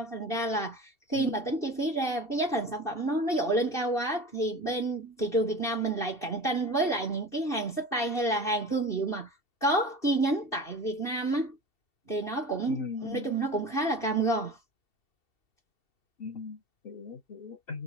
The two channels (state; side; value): late; right; 2.7 ms